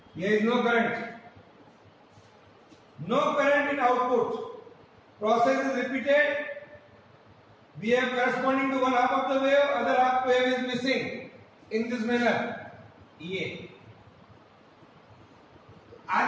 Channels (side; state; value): both; identical; correlation 1.00